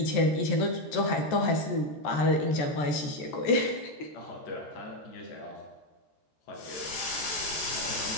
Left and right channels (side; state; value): right; late; 14 ms